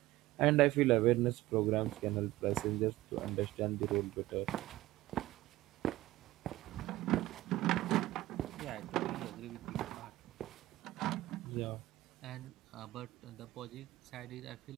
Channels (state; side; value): quieter; left; 16.9 dB